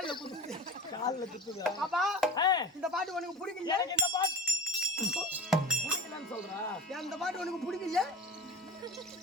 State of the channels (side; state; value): both; normal; correlation 0.32